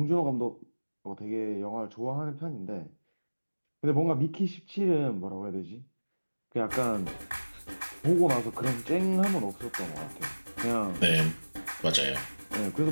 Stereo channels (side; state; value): both; inverted; correlation -1.00